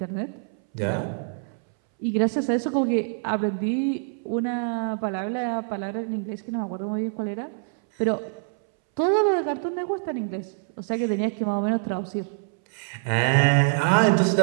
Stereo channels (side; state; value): left; silent; 61 dB below the other